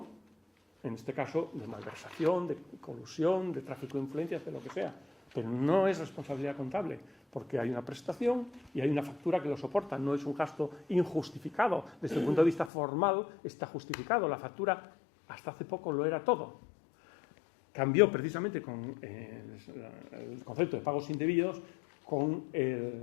en este caso, de malversación, de colusión, de tráfico de influencias, de lo que sea. Pero no es responsabilidad contable, porque hay una prestación y hay una factura que lo soporta. No es un gasto injustificado. Desde el punto de vista formal está justificado. La factura hasta hace poco lo era todo. Cambió precisamente con el concepto de pagos indebidos con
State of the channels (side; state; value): right; drops out; at 12.7 s